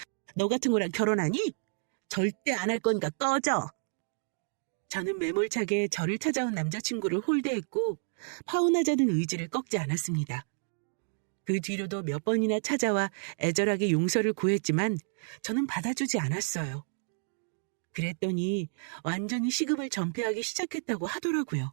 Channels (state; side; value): silent; left; digital silence